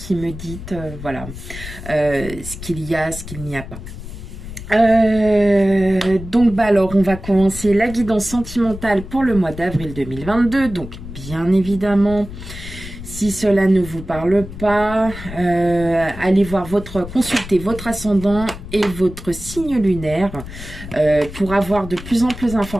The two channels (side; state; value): left; noise; rumble, 12 dB below the sound